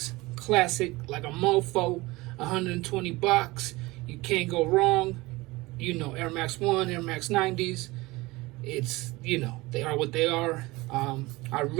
Classic, like a mofo, 120 bucks. You can't go wrong. You know, Air Max 1, Air Max 90s. It's, you know, they are what they are. I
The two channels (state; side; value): quieter; left; 21.4 dB